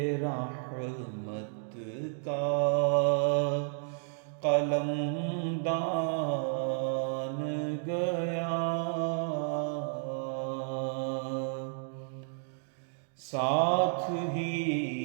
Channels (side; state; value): left; silent; digital silence